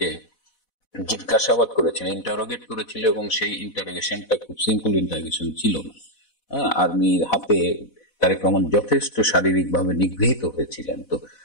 জিজ্ঞাসাবাদ করেছিল, ইন্টারোগেট করেছিল, এবং সেই ইন্টারোগেশনটা খুব সিম্পল ইন্টারোগেশন ছিল না। আর্মির হাতে তারেক রহমান যথেষ্ট শারীরিকভাবে নিগৃহীত হয়েছিলেন। তো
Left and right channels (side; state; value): right; late; 4.1 ms